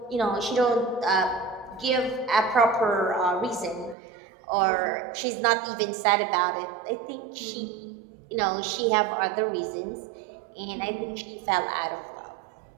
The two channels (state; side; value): drops out; left; at 4.0 s